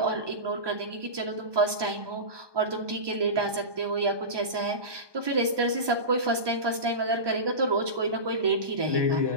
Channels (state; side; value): late; left; 1.2 ms